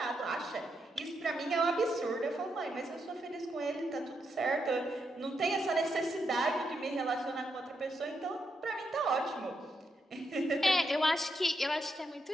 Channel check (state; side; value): normal; both; correlation 0.82